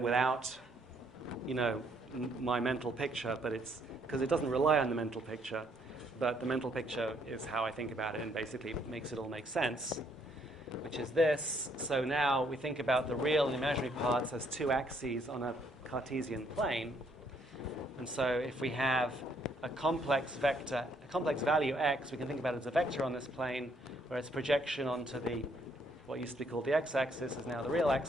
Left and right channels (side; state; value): both; normal; correlation 0.69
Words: without, my mental picture, but it's because it doesn't rely on the mental picture. But the mental picture is how I think about it and basically makes it all make sense, which is this. So now we think about the real and imaginary parts as two axes on a Cartesian plane. And so if we have a complex value x, we can think about it as a vector on this plane, where its projection onto what used to be called the x-axis is now the real